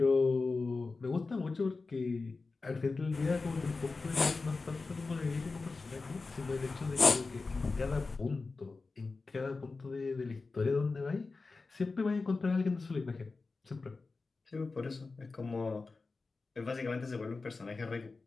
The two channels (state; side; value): quieter; right; 3.9 dB